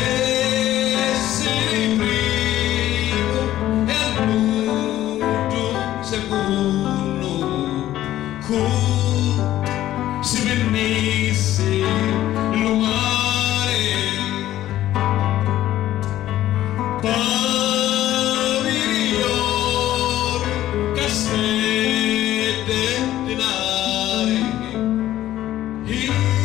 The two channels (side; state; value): right; quieter; 13.6 dB